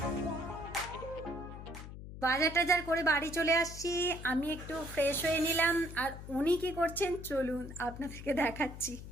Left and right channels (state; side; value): noise; left; hum, 12 dB below the sound